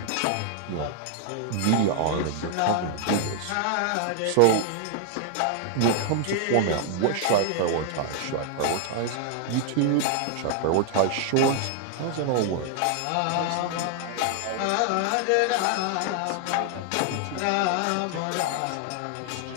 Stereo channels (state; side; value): different; both; correlation 0.00